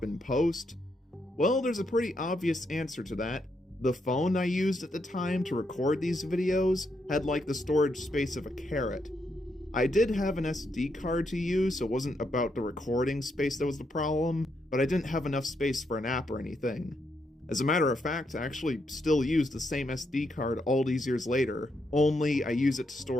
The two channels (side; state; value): both; normal; correlation 0.79